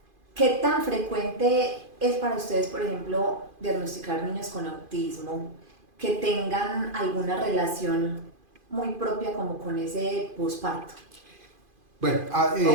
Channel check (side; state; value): left; late; 2.5 ms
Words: ¿qué tan frecuente es para ustedes, por ejemplo, diagnosticar niños con autismo que tengan alguna relación muy propia como con ese posparto Bueno,